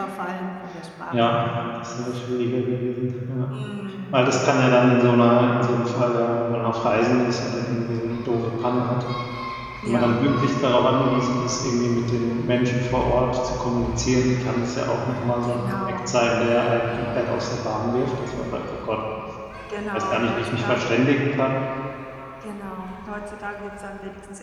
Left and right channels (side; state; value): both; identical; correlation 1.00